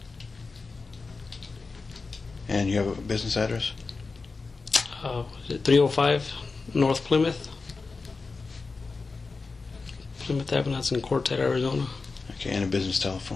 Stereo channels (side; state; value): right; quieter; 4.2 dB